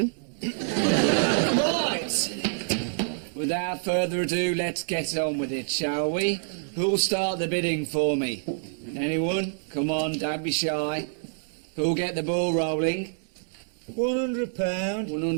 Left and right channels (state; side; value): silent; left; digital silence